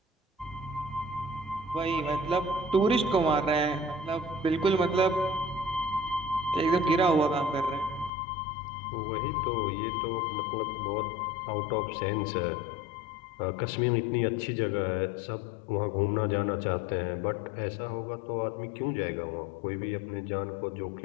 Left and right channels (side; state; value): right; drops out; at 8.1 s